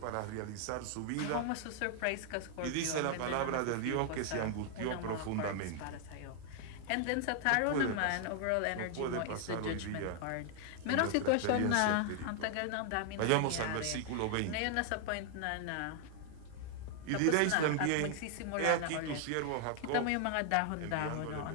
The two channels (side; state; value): both; different; correlation 0.00